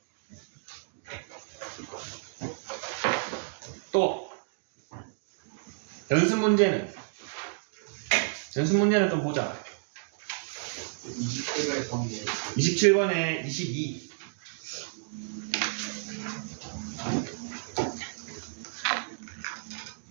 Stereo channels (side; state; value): left; silent; digital silence